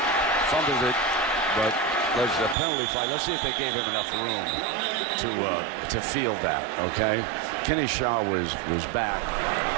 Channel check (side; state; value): left; drops out; at 2.6 s